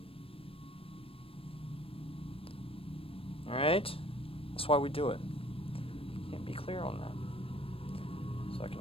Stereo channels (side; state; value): right; late; 0.27 ms